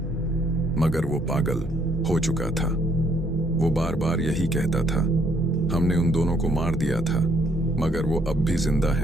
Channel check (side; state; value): both; normal; correlation 0.68